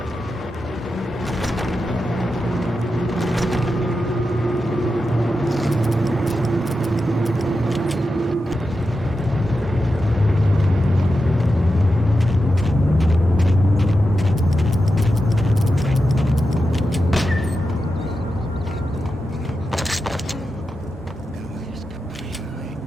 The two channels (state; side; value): normal; both; correlation 0.89